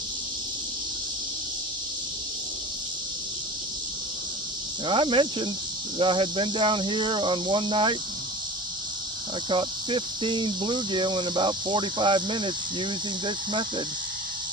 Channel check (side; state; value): both; normal; correlation 0.37